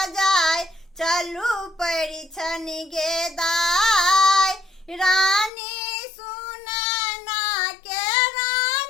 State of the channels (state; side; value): drops out; right; at 5.5 s